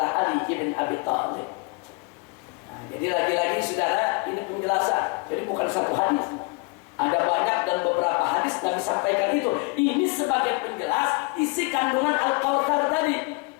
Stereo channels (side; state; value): right; quieter; 30.1 dB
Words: Ali bin Abi Thalib. Nah, jadi lagi-lagi saudara, ini penjelasan. Jadi bukan satu hadis, ada banyak dan beberapa hadis Nabi sampaikan itu. Ini sebagai penjelas isi kandungan Al-Kautsar tadi.